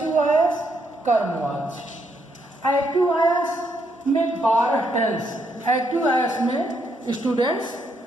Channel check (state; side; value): normal; both; correlation 0.75